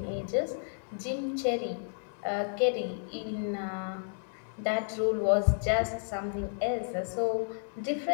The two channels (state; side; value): silent; right; digital silence